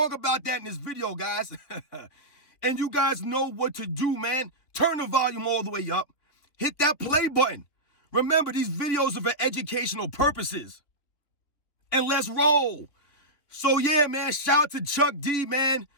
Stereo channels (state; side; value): late; right; 3.4 ms